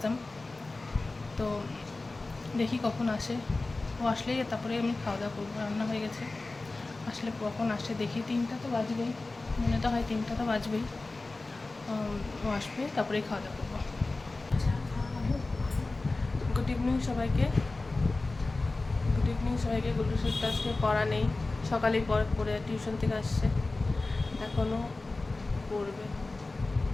তো দেখি কখন আসে। ও আসলেই তারপরে আমি খাওয়া দাওয়া করবো। রান্না হয়ে গেছে, আসলে কখন আসে দেখি। 3টা তো বাজবেই, মনে তো হয় 3টা তো বাজবেই। ও আসবে, তারপরেই খাওয়া দাওয়া করবো। গুড ইভিনিং সবাইকে। গুড্ডু স্যার তো আজকে পড়া নেই, সকালেই পড়ে টিউশন থেকে আসছে, এখনও পড়বে,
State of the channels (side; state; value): right; quieter; 3.3 dB